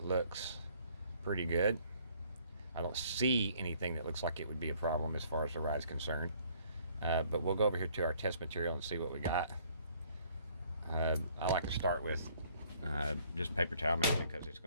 looks pretty good. I don't see anything that looks like it would be a problem as far as the ride's concerned. But we'll go over here to our test material and see what we got. I like to start with just paper towel mix because it's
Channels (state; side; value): inverted; both; correlation -0.61